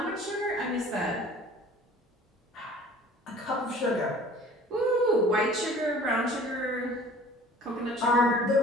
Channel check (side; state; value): both; normal; correlation 0.48